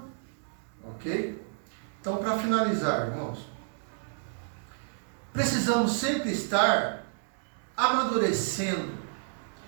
Ok? Então, para finalizar, irmãos, precisamos sempre estar amadurecendo.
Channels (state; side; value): silent; left; digital silence